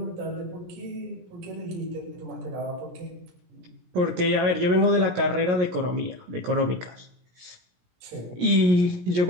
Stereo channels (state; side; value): late; left; 17 ms